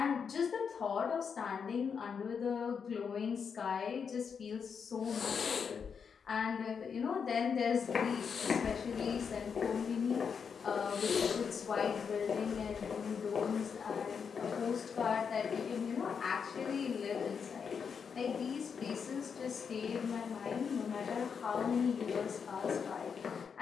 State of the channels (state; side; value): quieter; right; 6.4 dB